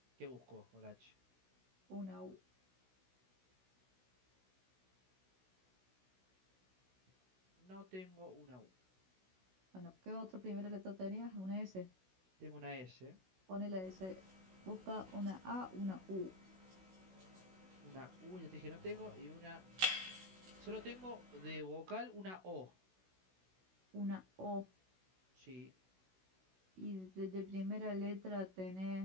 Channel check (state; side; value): late; left; 16 ms